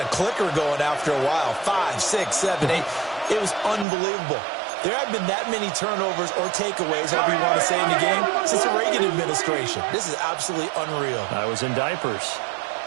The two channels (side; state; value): left; drops out; at 3.9 s